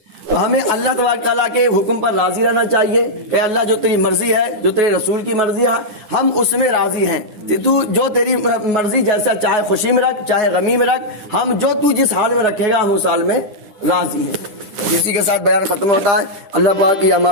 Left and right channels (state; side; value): late; left; 10 ms